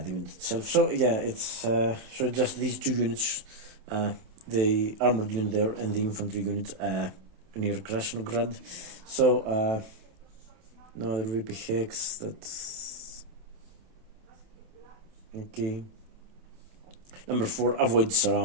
unit itself. So yeah, it's so just these 2 units, the armored unit there and the infantry unit near Krasnograd. So now the VP hex. That's okay. Number 4, avoid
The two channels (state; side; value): late; left; 27 ms